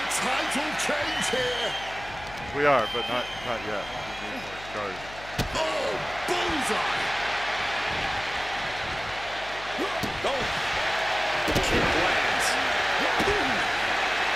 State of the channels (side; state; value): left; noise; hum, 17 dB below the sound